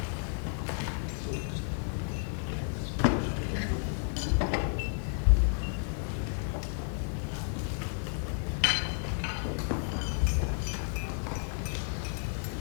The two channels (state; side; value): silent; right; 55 dB below the other